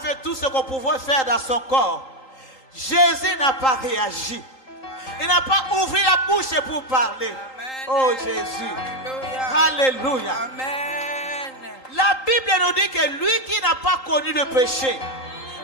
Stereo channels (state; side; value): late; right; 3.8 ms